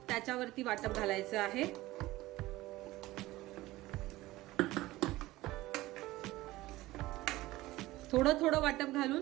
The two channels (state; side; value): quieter; left; 18.0 dB